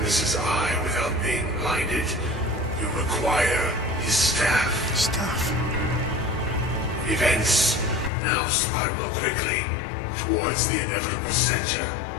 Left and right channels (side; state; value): right; drops out; at 8.1 s